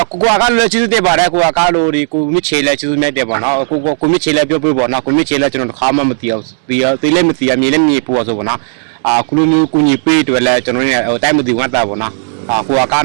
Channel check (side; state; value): left; silent; digital silence